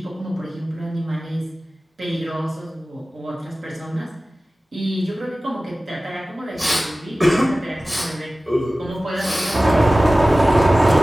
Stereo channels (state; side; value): normal; both; correlation 0.97